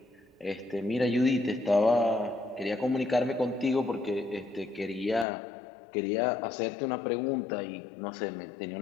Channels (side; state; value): right; drops out; at 5.2 s